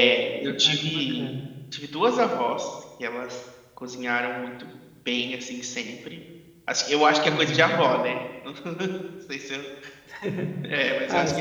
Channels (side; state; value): both; identical; correlation 1.00